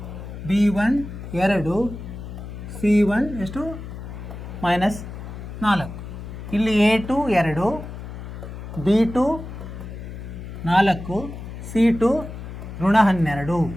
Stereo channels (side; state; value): left; noise; hum, 10 dB below the sound